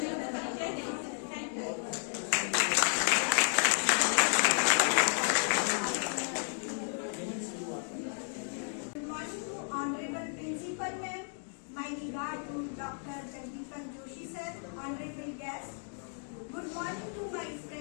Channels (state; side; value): silent; right; 56 dB below the other